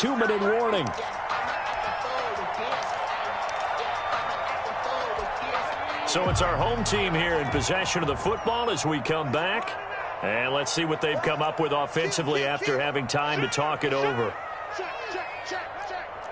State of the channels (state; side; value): identical; both; correlation 1.00